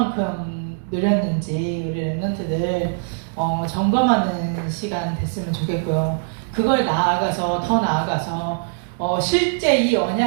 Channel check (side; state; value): left; silent; digital silence